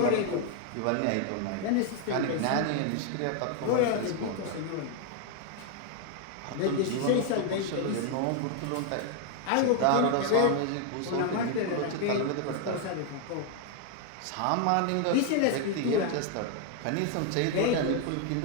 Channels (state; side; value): different; both; correlation 0.00